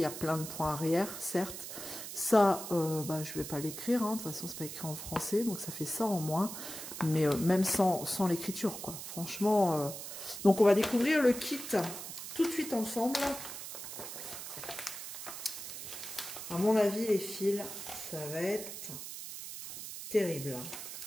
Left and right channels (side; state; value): right; noise; hiss, 9 dB below the sound